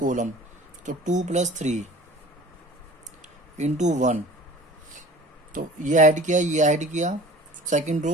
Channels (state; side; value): normal; both; correlation 0.44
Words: तो 2 + 3 इंटू 1, तो ये ऐड किया, ये ऐड किया, सेकंड